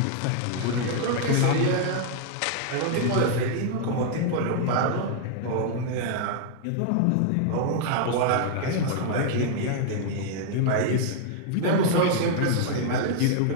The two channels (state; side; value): different; both; correlation -0.01